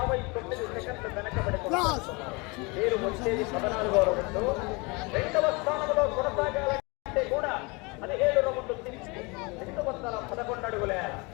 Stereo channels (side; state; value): right; quieter; 27.6 dB